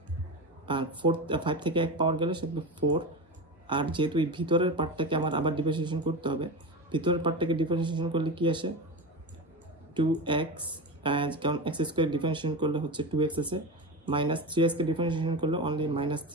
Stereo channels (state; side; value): normal; both; correlation 0.23